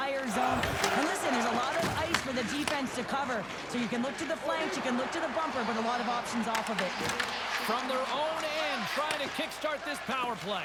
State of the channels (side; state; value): right; noise; hum, 25 dB below the sound